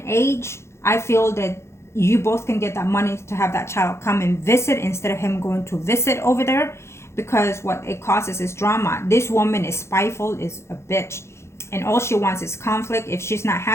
age, I feel that you both can get that money to have that child come and visit instead of him going to visit over there, because what it causes is drama. This woman is spiteful, is a bitch, and all she wants is conflict. If she's not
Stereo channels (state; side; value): late; right; 0.13 ms